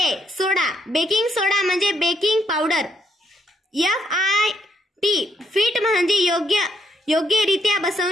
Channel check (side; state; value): both; normal; correlation 0.74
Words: सोडा बेकिंग सोडा म्हणजे बेकिंग पावडर. FIT फिट म्हणजे योग्यरित्या